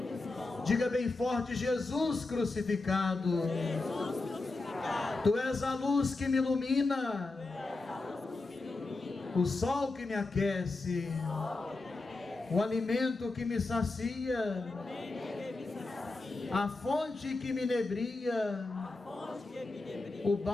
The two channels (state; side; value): quieter; right; 3.4 dB